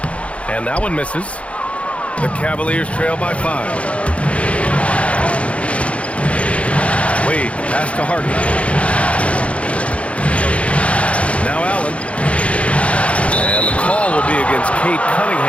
And that one misses. The Cavaliers trail by 5. Wade, pass to Harden. Now Allen. And the call will be against Cade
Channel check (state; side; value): late; right; 0.063 ms